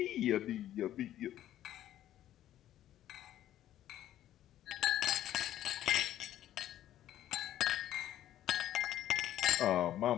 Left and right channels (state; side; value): quieter; right; 12.4 dB